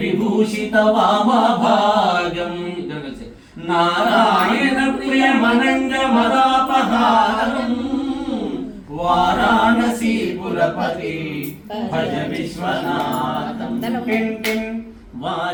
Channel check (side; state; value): both; identical; correlation 1.00